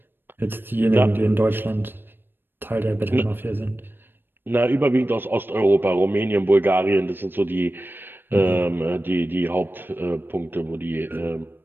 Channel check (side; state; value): left; late; 0.097 ms